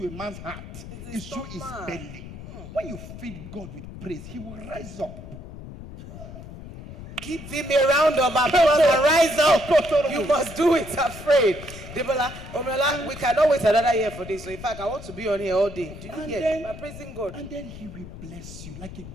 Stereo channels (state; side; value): noise; left; rumble, 13 dB below the sound